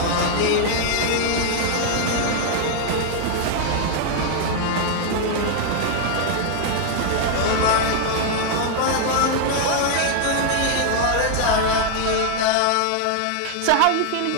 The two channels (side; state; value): both; different; correlation 0.00